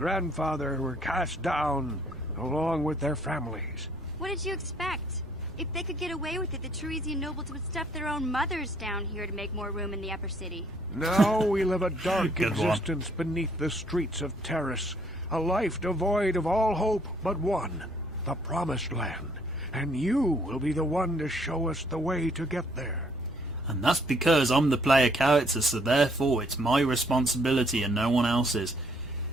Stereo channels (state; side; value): normal; both; correlation 0.65